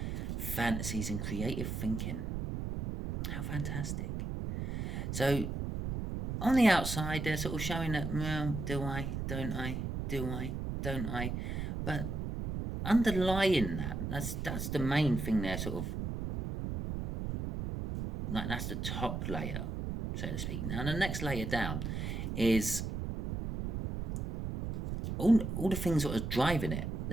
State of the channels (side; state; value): right; noise; rumble, 3 dB below the sound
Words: fantasies and creative thinking. How fantastic. So, on the outside, they're sort of showing that, well, do I, don't I, do I, don't I? But underlying that, that's the main thing there, sort of, like that's the top layer, so to speak. Now, the next layer down is all the things that are driving it.